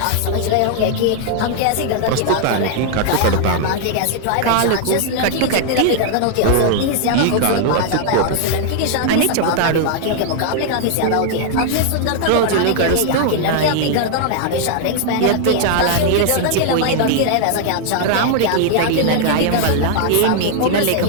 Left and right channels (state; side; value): different; both; correlation 0.00